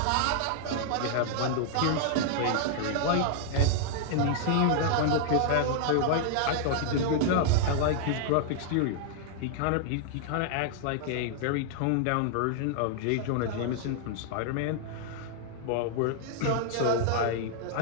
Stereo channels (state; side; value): different; both; correlation -0.01